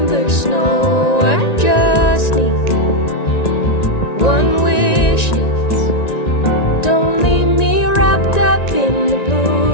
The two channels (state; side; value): late; right; 1.9 ms